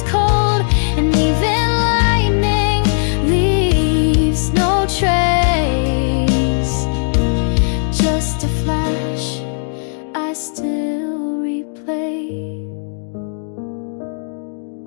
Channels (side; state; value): right; silent; digital silence